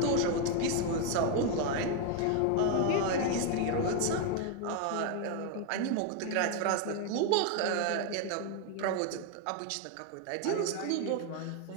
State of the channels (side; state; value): both; different; correlation 0.01